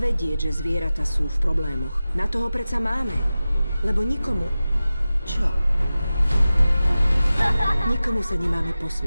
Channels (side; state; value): both; inverted; correlation -0.95